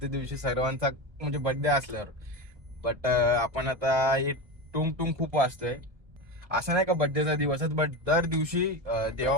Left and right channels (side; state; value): left; late; 1.7 ms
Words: दिवशी, सर्वांचा म्हणजे बर्थडे असल्यावर. बट आपण आता हे टुंग टुंग खूप वाजतोय. असं नाही का बर्थडेचा दिवसच, बट दर दिवशी